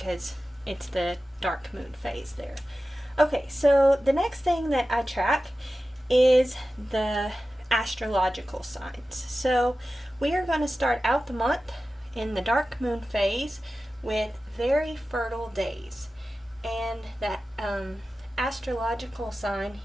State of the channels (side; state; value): both; normal; correlation 0.95